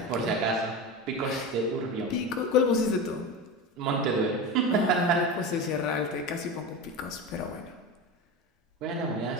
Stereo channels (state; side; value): normal; both; correlation 0.24